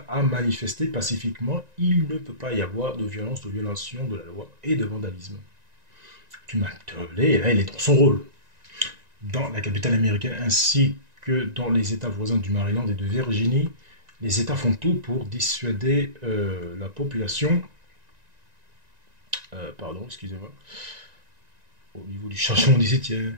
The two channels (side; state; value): left; late; 1.9 ms